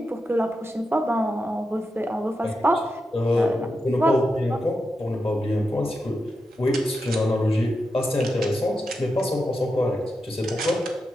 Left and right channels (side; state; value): both; normal; correlation 0.88